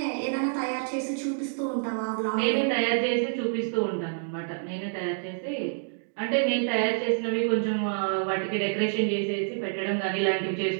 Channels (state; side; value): silent; left; digital silence